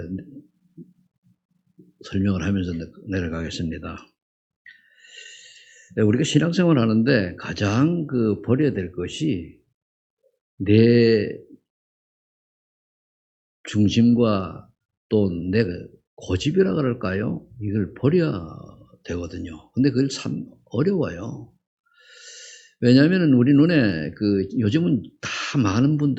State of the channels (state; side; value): identical; both; correlation 1.00